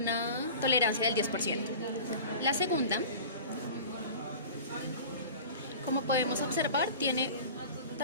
tolerancia del 10%. La segunda, como podemos observar, tiene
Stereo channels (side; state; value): both; inverted; correlation -0.38